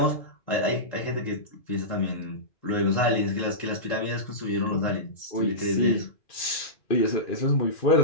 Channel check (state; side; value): late; right; 2.4 ms